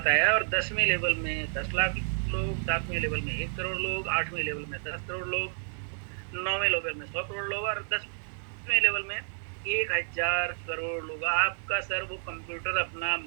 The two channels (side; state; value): left; silent; 55 dB below the other